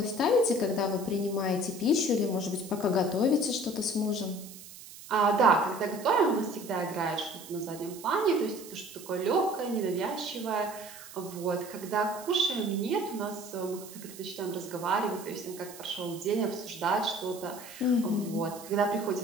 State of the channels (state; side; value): noise; right; hiss, 16 dB below the sound